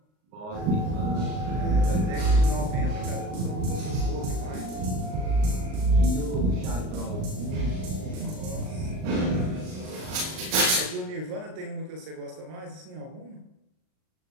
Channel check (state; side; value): late; left; 38 ms